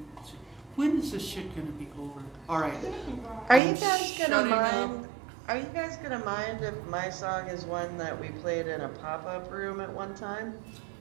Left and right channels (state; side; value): drops out; left; at 3.6 s